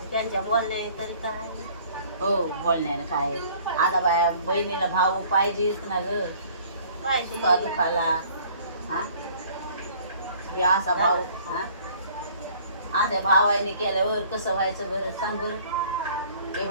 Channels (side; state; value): both; inverted; correlation -0.54